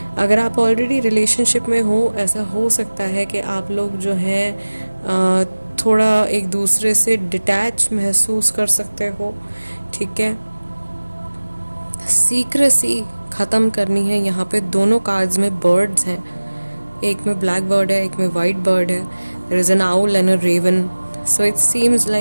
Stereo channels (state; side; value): inverted; both; correlation -1.00